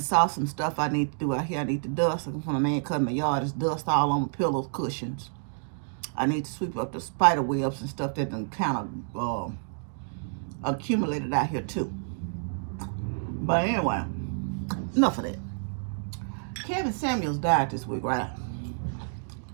saw some stuff I need to do out here. I need to dust. When a man cutting my yard, there's dust all on my pillows, cushions. I need to sweep up the spider webs and stuff that done kind of accumulated out here too. But anyway, enough of that. Kevin Samuels died this week, right?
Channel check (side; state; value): left; silent; digital silence